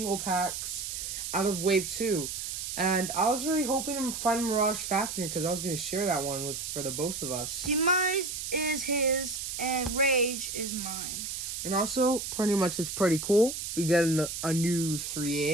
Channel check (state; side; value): noise; right; hiss, 5 dB below the sound